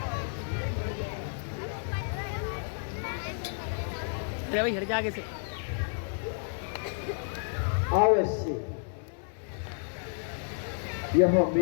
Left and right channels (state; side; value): silent; right; digital silence